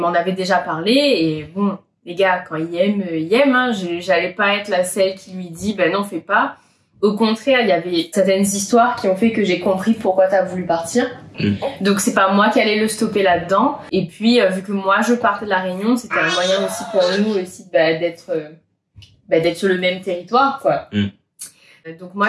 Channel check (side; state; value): both; identical; correlation 1.00